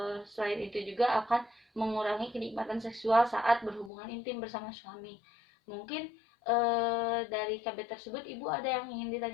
selain itu juga akan mengurangi kenikmatan seksual saat berhubungan intim bersama suami. Mungkin dari KB tersebut Ibu ada yang ingin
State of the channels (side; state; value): right; drops out; at 3.9 s